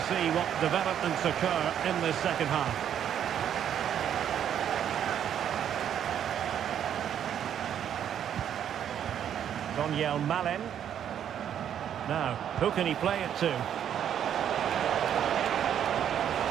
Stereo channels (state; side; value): quieter; left; 9.5 dB